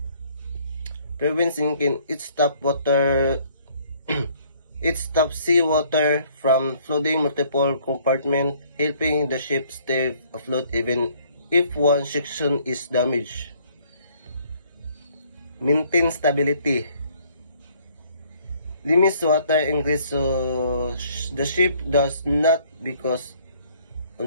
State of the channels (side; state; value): both; inverted; correlation -0.62